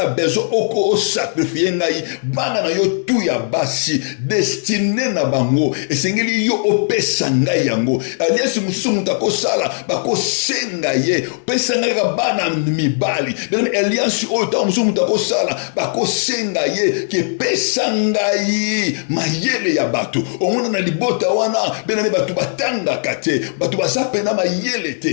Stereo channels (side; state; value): right; silent; 67 dB below the other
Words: bezo oko o sacrifier ngai bana na yo tu ya basi destiné na bango esengeli yo opesa ngai yango alliance musumu tako sala bako senga ye pesa ngai ka bana mibali bien alliance o ta musumu tako sala bako senga ye ke pesa ngai mayele ya bato omona na libota wana bien batu batanga kate batu basapena mayele